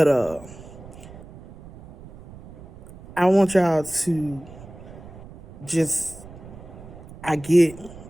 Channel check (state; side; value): noise; right; rumble, 18 dB below the sound